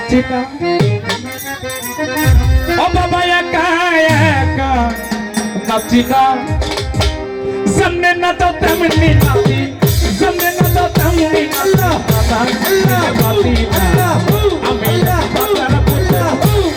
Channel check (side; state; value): both; identical; correlation 1.00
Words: না ও বাবা একা একা নাচি না সামনে না তো তেমনি নাচি সামনে না তো তেমনি নাচি না আমি বাবার পুত্র